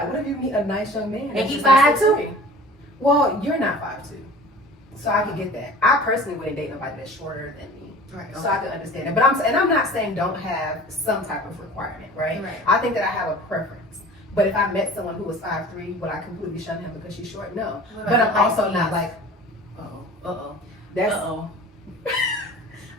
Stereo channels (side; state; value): both; normal; correlation 0.42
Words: it. What if you meet a nice young man and he's like 5'2"? Well, you're not 5'2", so I can get that. I personally wouldn't date nobody that's shorter than me. Right. So I can understand it. But I'm not saying don't have some type of requirement, right? I think that I have a preference. But if I met someone who was 5'3", would I completely shun him because she's short? No. But I'm also not like,